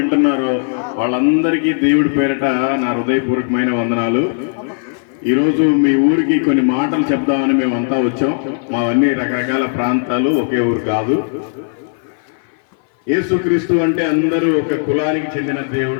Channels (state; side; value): silent; right; 58 dB below the other